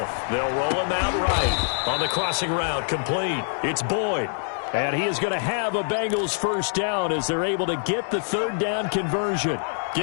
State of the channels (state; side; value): silent; right; digital silence